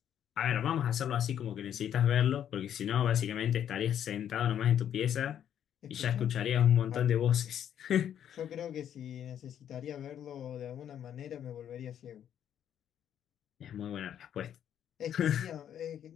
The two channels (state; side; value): quieter; right; 9.8 dB